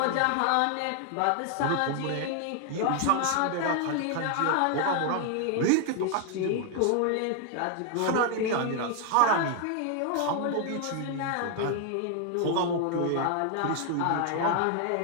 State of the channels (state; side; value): different; both; correlation 0.00